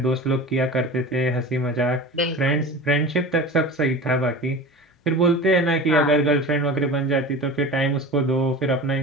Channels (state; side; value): normal; both; correlation 0.34